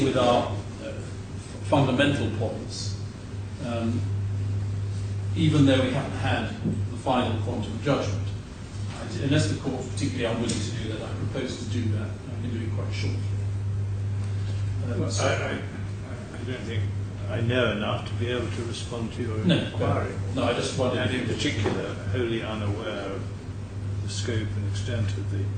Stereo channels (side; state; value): both; identical; correlation 1.00